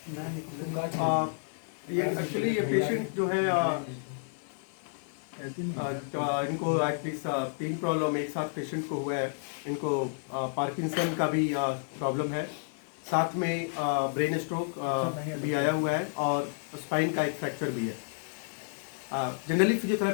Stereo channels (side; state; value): right; silent; 57 dB below the other